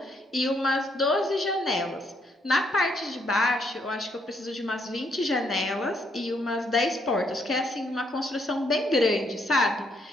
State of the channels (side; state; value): both; normal; correlation 0.73